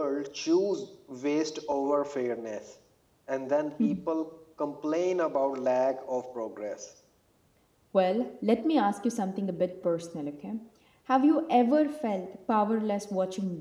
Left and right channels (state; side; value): identical; both; correlation 1.00